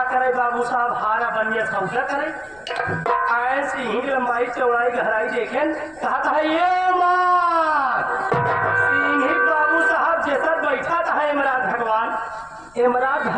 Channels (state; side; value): noise; left; rumble, 29 dB below the sound